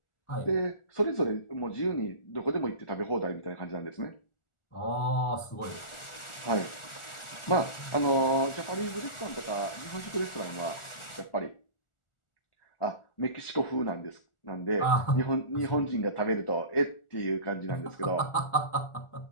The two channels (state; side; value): late; right; 1.4 ms